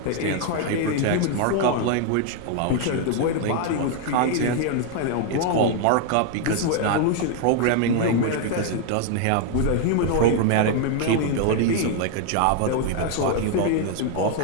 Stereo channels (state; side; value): different; both; correlation 0.00